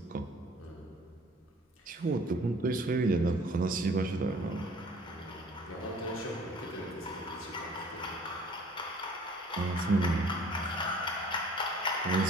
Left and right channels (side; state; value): both; normal; correlation 0.52